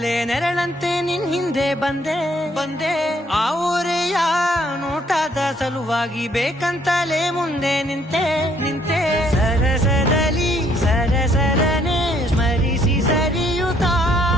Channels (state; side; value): normal; both; correlation 0.66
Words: ನೆರಳಂತೆ ನಿನ್ ಹಿಂದೆ ಬಂದೆ. ಆ ಊರೆಯ ನೋಟದ ಸಲುವಾಗಿ ಬೇಕಂತಲೇ ಮುಂದೆ ನಿಂತೆ. ಸರಸದಲ್ಲಿ ಸರಸರನೆ ಸ್ಮರಿಸಿ ಸರಿಯುತ್ತಾ,